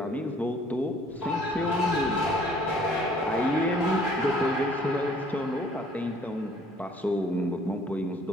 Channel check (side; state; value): both; normal; correlation 0.57